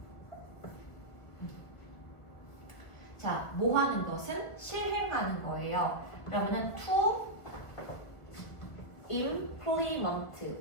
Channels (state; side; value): late; right; 1.6 ms